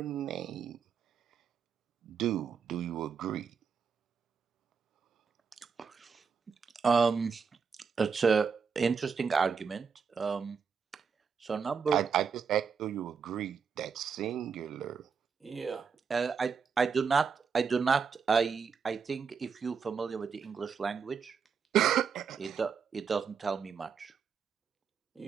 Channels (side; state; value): left; quieter; 6.0 dB